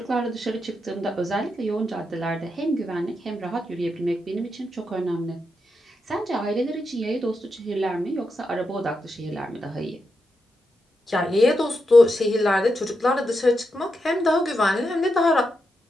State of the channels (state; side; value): normal; both; correlation 0.85